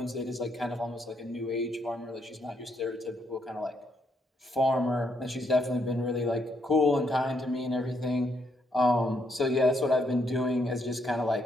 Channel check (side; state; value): both; normal; correlation 0.75